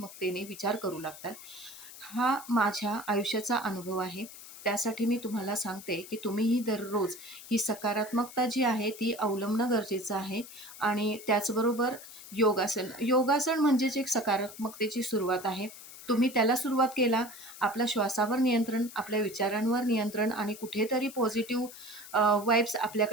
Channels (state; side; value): noise; left; hiss, 16 dB below the sound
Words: विचार करू लागतात. हा माझ्या आयुष्याचा अनुभव आहे. त्यासाठी मी तुम्हाला सांगते, की तुम्हीही दररोज ही सकारात्मकता जी आहे, ती अवलंबणं गरजेचं आहे आणि त्याचबरोबर योगासन. योगासन म्हणजेच एक सकारात्मकतेची सुरुवात आहे. तुम्ही त्याला सुरुवात केला, आपल्या श्वासावर नियंत्रण, आपल्या विचारांवर नियंत्रण आणि कुठेतरी पॉझिटिव्ह वाइब्स